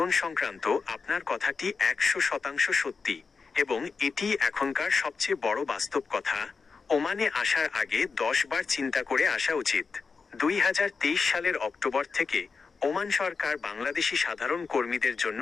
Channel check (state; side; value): quieter; right; 4.9 dB